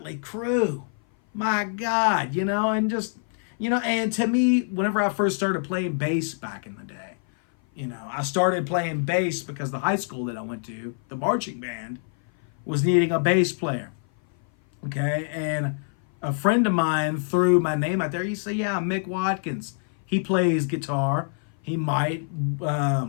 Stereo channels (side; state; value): right; silent; 57 dB below the other